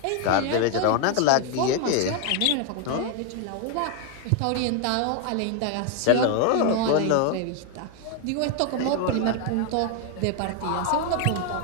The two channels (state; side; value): different; both; correlation 0.01